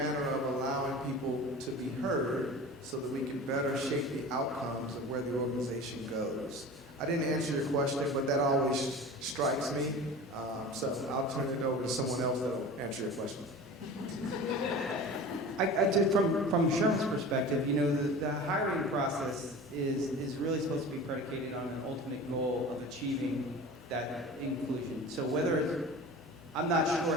of allowing people to be heard so that we can better shape the outcomes of where the organization goes. I didn't answer your question, but that always strikes me. So I'll turn it over to someone else that will answer your question. From Sherman's perspective, you know, the hiring process is really supposed to be predicated on an ultimate goal of achieving that inclusion. So whether, I'm not sure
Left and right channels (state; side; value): normal; both; correlation 0.36